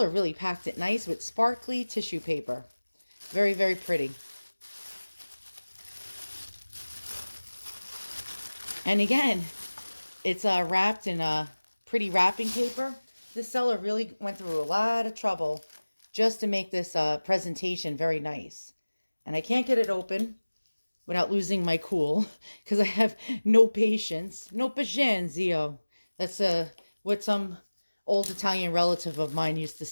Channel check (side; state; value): both; inverted; correlation -1.00